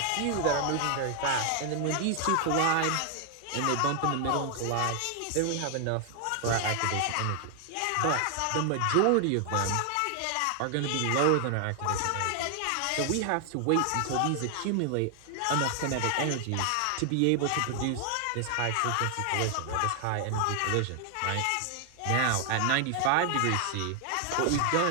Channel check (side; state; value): both; different; correlation 0.00